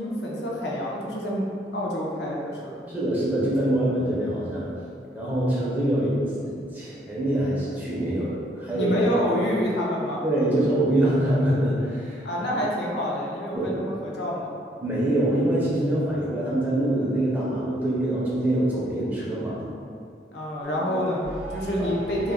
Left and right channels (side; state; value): both; normal; correlation 0.66